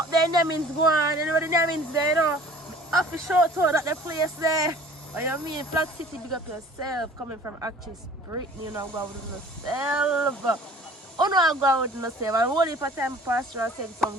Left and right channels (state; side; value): normal; both; correlation 0.49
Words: there, Nemins go on, you know the Nemins there, you know. Have to show to that the place there. What you mean? Flag City, big up yourself. Coming from actress Brittany, you know, go out with yourself. Oh no, I go out with yourself. And only for time pastor I send some